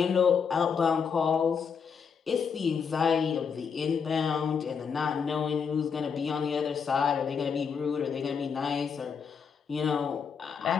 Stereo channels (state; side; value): quieter; right; 6.4 dB